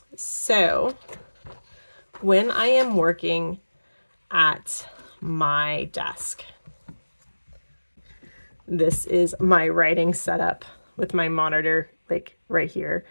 So when I am working at my desk, this is my writing setup with my monitor, like right here.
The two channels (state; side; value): inverted; both; correlation -1.00